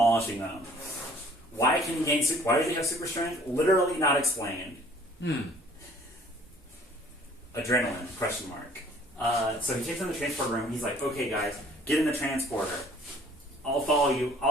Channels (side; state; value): both; normal; correlation 0.54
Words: them. Why does he have super strength? Literally not explained. Adrenaline? Question mark. So he takes them to the transporter room. He's like, okay, guys, get in the transporter. I'll follow